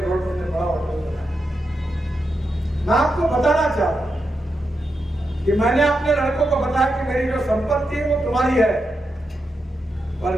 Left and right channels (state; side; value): normal; both; correlation 0.86